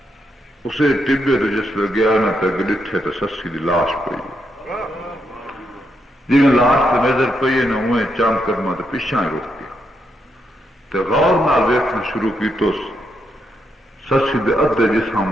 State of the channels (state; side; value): normal; both; correlation 0.80